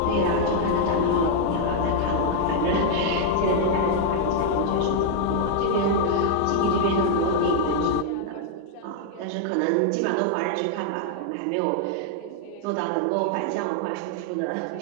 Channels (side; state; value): both; different; correlation 0.00